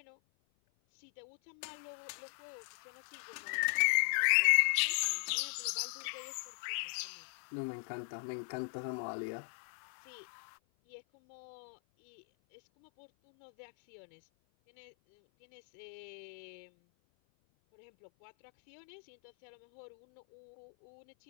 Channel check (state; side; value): silent; right; 52 dB below the other